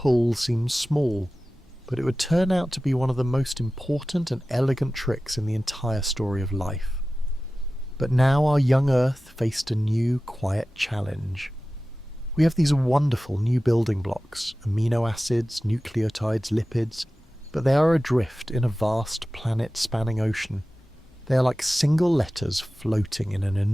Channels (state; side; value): normal; both; correlation 0.96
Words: seems small, but it would turn out to be one of the most important and elegant tricks in the entire story of life. But now our young Earth faced a new, quiet challenge. We have these wonderful new building blocks, amino acids, nucleotides, lipids, but they are adrift in a vast planet-spanning ocean. They are like single letters floating in an